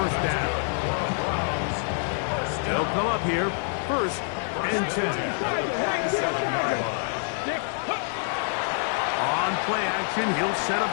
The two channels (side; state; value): right; silent; 57 dB below the other